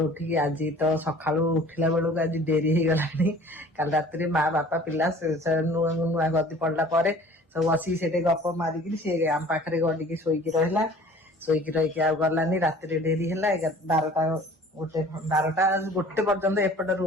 उठिकी आज तो सकाळु उठिला बेलू आज डेरी हो गलानी। काल रात्रि माँ बापा पिला नुआ नुआ गदी पड़ला पर सब बसी से गप मारिकी सी आम पाखे गडिकी शोईकी रहा। शोईकी रही आ गलानी राति डेरी है 12टा गोटे 12टा गोटे पर्यंत एपट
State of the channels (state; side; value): normal; both; correlation 0.48